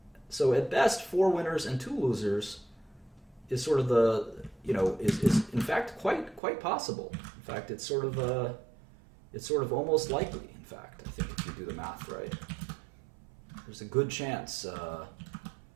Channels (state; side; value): drops out; left; at 6.4 s